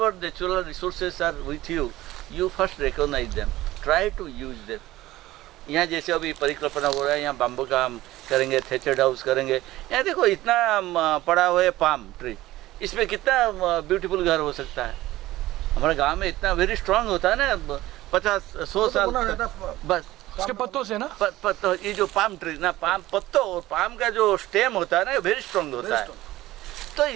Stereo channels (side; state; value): left; quieter; 16.5 dB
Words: natural resources are with you, you first recognise them, try to use them. यहाँ जैसे अभी परिकल्पना हो रहा है, यहाँ बाम्बू का हम करेंगे, थेचर्ड हाउस करेंगे। यहाँ देखो इतना पड़ा हुआ है पाम ट्री, इसमें कितना ब्यूटीफुल घर हो सकता है। हमारे गांव में इतना वेरी स्ट्रांग होता है ना, 50-100 साल बस उसके पत्तों से ना, पत्तों, ये जो पाम ट्री ना, पाम पत्तों और पाम का जो स्टेम होता है ना, वेरी स्ट्रांग होता है। तो